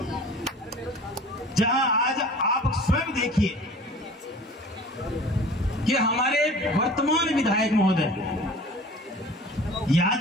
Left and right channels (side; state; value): both; normal; correlation 0.44